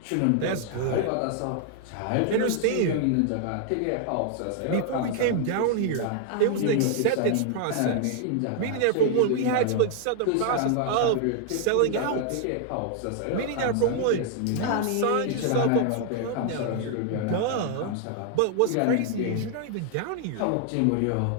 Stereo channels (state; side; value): different; both; correlation 0.00